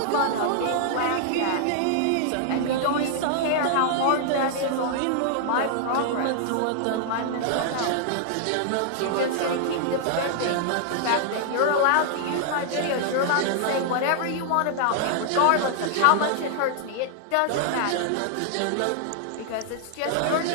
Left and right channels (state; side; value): different; both; correlation -0.01